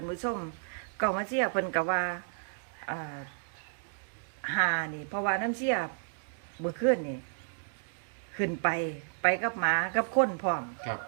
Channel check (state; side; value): silent; left; digital silence